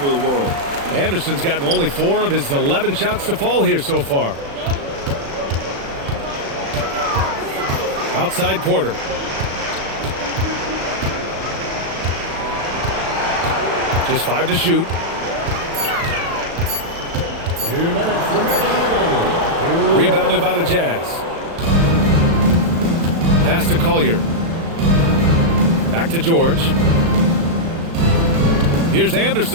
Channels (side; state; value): left; late; 36 ms